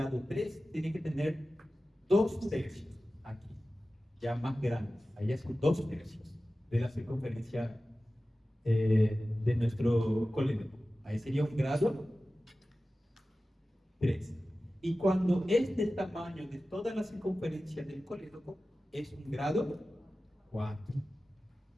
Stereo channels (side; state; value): both; normal; correlation 0.95